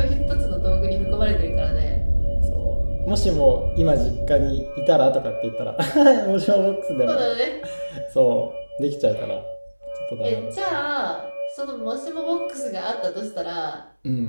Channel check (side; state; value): both; inverted; correlation -1.00